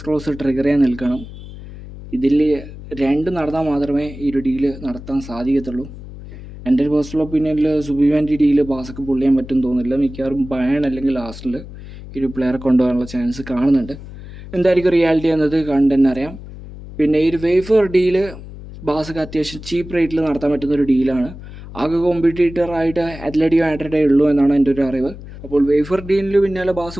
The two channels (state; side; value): noise; left; hum, 14 dB below the sound